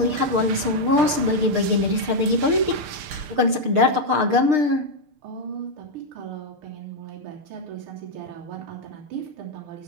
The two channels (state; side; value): late; left; 6.6 ms